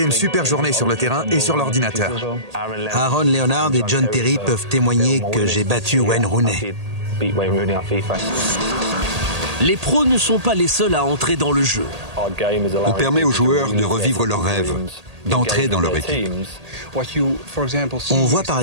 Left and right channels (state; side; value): late; left; 1.8 ms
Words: une super journée sur le terrain et sur l'ordinateur. Aaron Leonard et John Terry peuvent témoigner que j'ai battu Wayne Rooney. Les pros ne sont pas les seuls à entrer dans le jeu. On permet aux joueurs de revivre leurs rêves, d'entrer dans leur équipe. On voit par